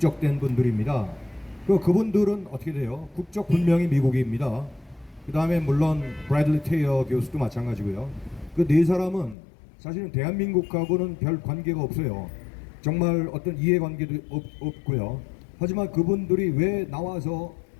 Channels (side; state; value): right; drops out; at 9.3 s